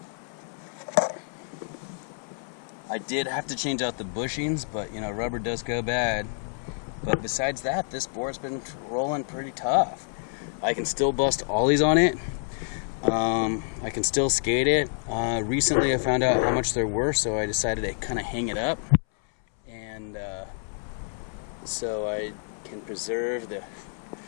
I did have to change out the bushings, but you know, rubber does go bad. But besides that, this board's been rolling pretty tough. I can still bust ollies on it. I can still skate it. Recently I found out how much they're worth, so I decided to kind of hang it up, and so I can preserve the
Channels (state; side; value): silent; right; 60 dB below the other